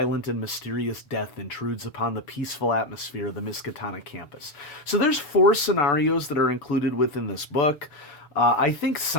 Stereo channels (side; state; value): right; late; 7.0 ms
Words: and mysterious death intrudes upon the peaceful atmosphere of the Miskatonic campus. So there's 4 scenarios that are included within this book. I think